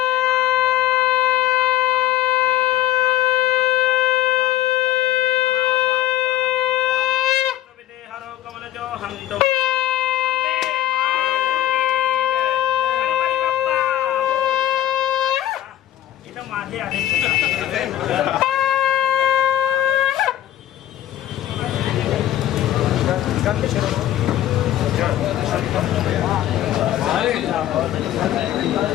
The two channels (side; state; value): right; quieter; 13.1 dB